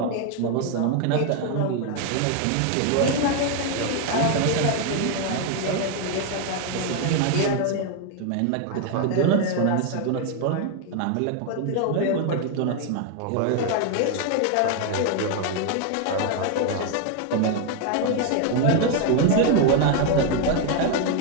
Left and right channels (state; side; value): different; both; correlation 0.01